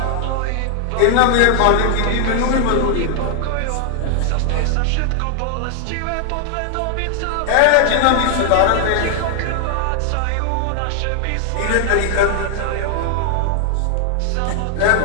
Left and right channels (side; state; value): both; different; correlation 0.00